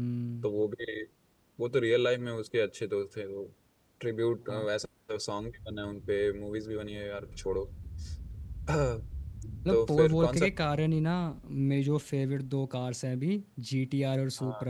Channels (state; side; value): identical; both; correlation 1.00